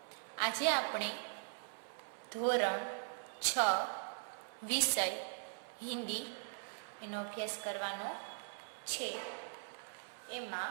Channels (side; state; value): left; silent; 51 dB below the other